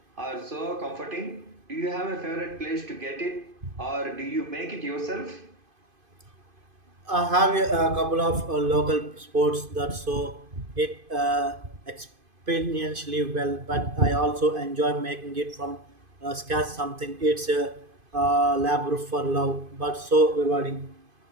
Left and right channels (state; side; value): late; left; 2.5 ms